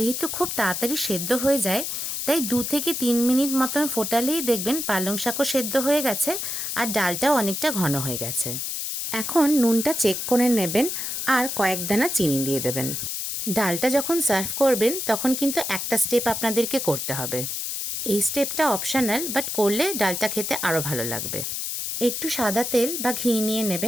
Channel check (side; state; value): left; noise; hiss, 3 dB below the sound